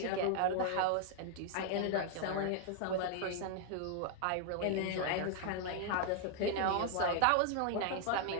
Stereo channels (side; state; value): both; different; correlation 0.00